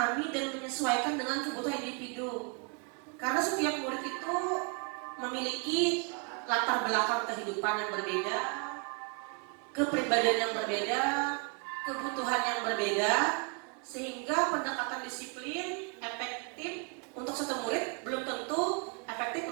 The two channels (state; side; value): quieter; left; 35.9 dB